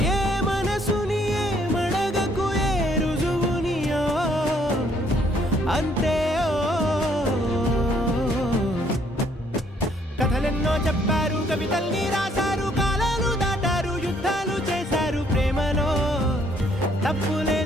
ఏ మనసుని ఏ మడగకు ఏ రుజువునియో అంతే కథలెన్నో చెప్పారు కవితల్ని రాశారు కాలాలు దాటారు యుద్ధాలు చేశారు ప్రేమలో తప్పు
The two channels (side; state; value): both; normal; correlation 0.66